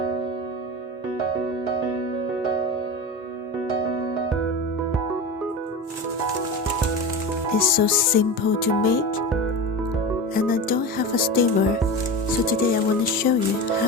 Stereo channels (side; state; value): both; normal; correlation 0.26